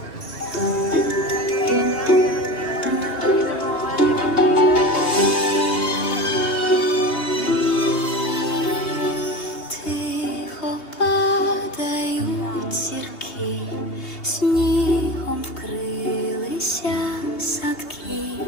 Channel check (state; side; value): late; right; 2.8 ms